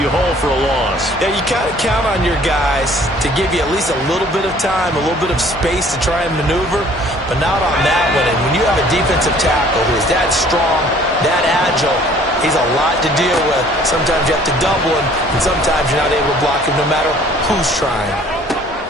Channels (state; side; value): normal; both; correlation 0.55